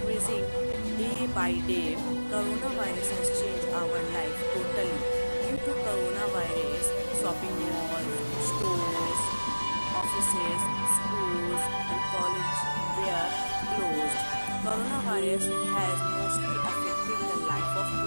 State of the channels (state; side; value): inverted; both; correlation -1.00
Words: day by day. Coronavirus has changed our life totally. Due to coronavirus, shopping malls, stores, offices, schools and colleges were closed. Coronavirus has mostly affected the life of